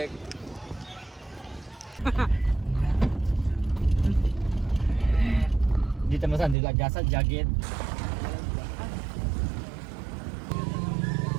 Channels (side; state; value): left; drops out; at 6.6 s